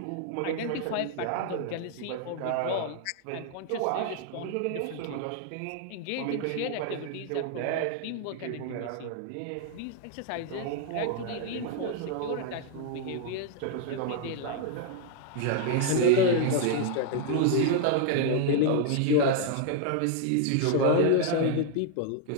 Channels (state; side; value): different; both; correlation 0.00